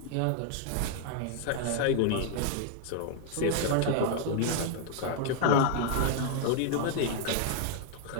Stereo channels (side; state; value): both; different; correlation 0.00